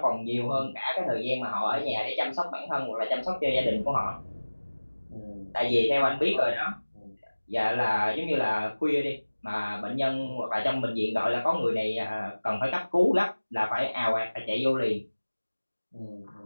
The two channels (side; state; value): both; inverted; correlation -1.00